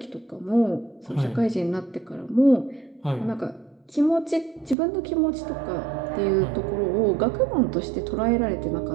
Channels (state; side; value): drops out; left; at 4.8 s